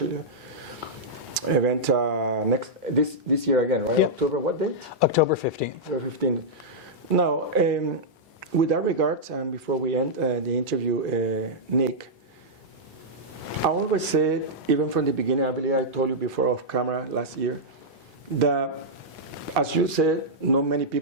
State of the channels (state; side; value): normal; both; correlation -0.09